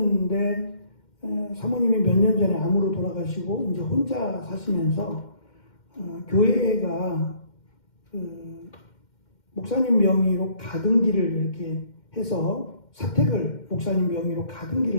사모님이 몇 년 전에 암으로 돌아가시고 이제 혼자 사시면서 교회가 목사님 명의로 가등기를 이렇게 해서 사택을 목사님 명의로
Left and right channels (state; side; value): late; right; 2.1 ms